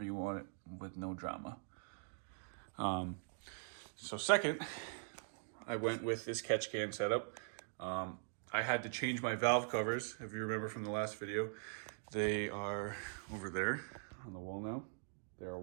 you want it, with no drama. So second, I went with this catch can setup. I had to change my valve covers, if you remember from the last video. They are over there on the wall now. They are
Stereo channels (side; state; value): left; silent; digital silence